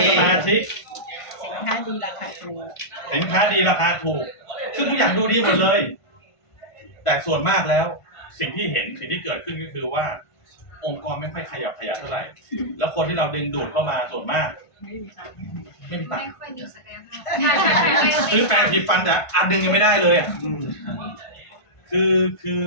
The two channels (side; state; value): right; late; 1.5 ms